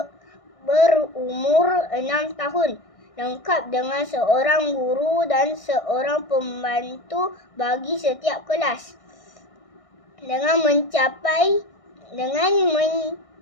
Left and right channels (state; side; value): late; right; 1.6 ms